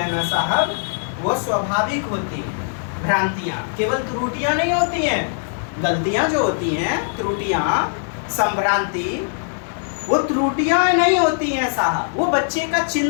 ना साहब, वो स्वाभाविक होती हैं। भ्रांतियां केवल त्रुटियां नहीं होती हैं, गलतियां जो होती हैं, त्रुटियां, संभ्रांति, वो त्रुटियां नहीं होती हैं साहब, वो बच्चे का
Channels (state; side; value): silent; right; digital silence